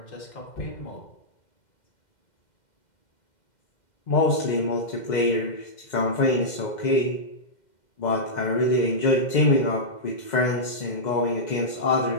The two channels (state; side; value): late; right; 2.1 ms